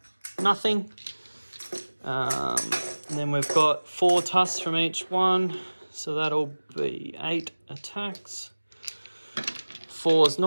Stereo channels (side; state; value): both; inverted; correlation -1.00